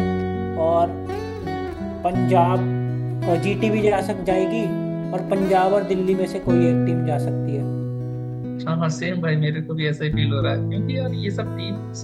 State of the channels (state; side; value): identical; both; correlation 1.00